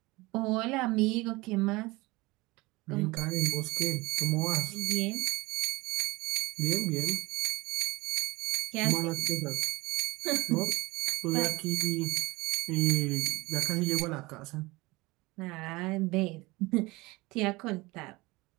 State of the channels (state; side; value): quieter; left; 22.5 dB